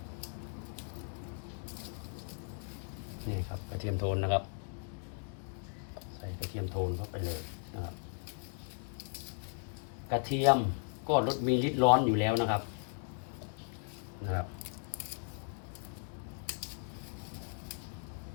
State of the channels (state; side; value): silent; right; 53 dB below the other